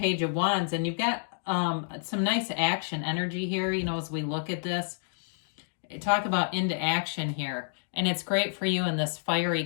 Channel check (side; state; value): right; silent; digital silence